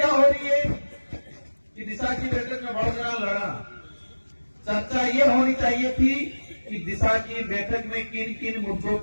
हो रही है कि दिशा की बैठक में बढ़ना लड़ा। चर्चा ये होनी चाहिए थी कि दिशा की बैठक में किन किन मुद्दों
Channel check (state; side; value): inverted; both; correlation -1.00